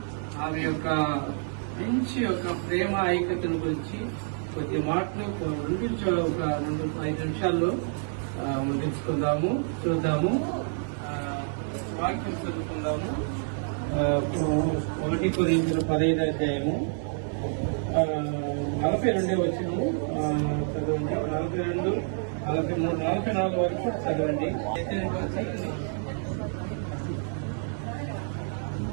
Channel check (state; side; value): silent; left; 59 dB below the other